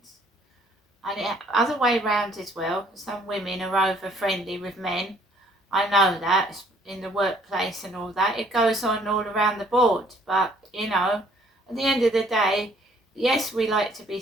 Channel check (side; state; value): both; normal; correlation 0.61